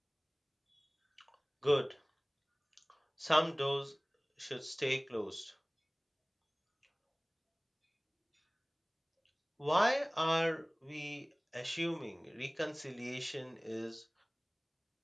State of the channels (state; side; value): identical; both; correlation 1.00